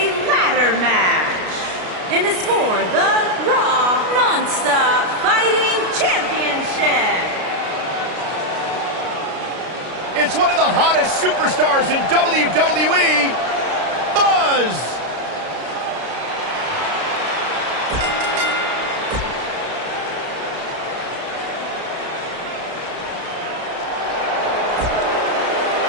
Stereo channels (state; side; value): late; left; 33 ms